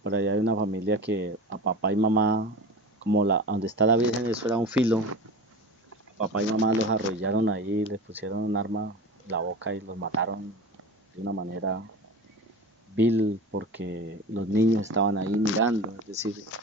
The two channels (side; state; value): both; normal; correlation 0.32